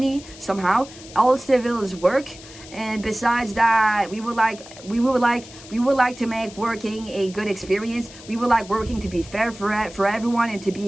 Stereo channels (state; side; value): noise; left; hiss, 18 dB below the sound